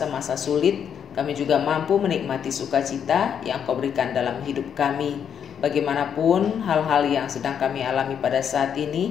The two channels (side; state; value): right; quieter; 8.1 dB